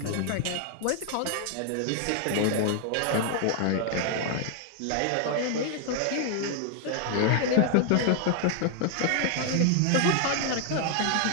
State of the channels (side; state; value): both; different; correlation 0.00